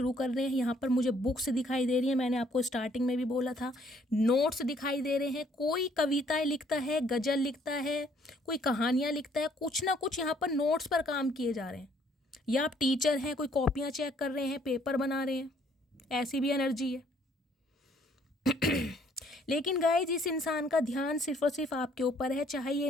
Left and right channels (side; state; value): both; normal; correlation 0.64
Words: कर रहे हैं। यहाँ पर मुझे बुक्स दिखाई दे रही है, मैंने आपको स्टार्टिंग में भी बोला था। नोट्स दिखाई दे रहे हैं, कोई कविताएं लिखता है, गज़ल लिखता है, कोई कहानियाँ लिखता है, कुछ ना कुछ यहाँ पर नोट्स पर काम किए जा रहे हैं। या आप टीचर हैं, कोई कॉपियाँ चेक कर रहे हैं, पेपर बना रहे हैं, ऐसी भी एनर्जी है। लेकिन गाइज इस इंसान का ध्यान सिर्फ और सिर्फ आपके ऊपर है, चाहे ये